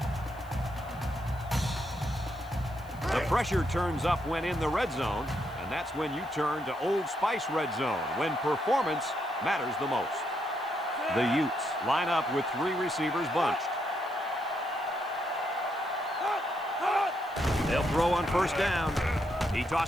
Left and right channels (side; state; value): left; noise; hiss, 26 dB below the sound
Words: Pressure turns up when in the red zone, and that's when you turn to Old Spice red zone, when performance matters the most. The Utes line up with 3 receivers bunched. They'll throw on 1st down. He